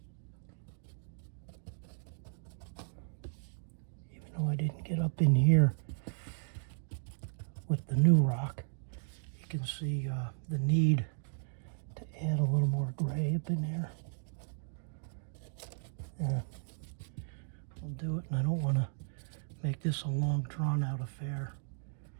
Even though I didn't get up in here with the new rock, you can see the need to add a little more gray up in there. I'll do it, and I don't want to make this a long drawn out affair.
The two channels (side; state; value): left; silent; digital silence